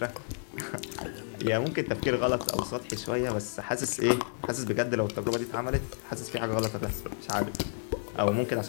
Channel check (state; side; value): silent; right; 57 dB below the other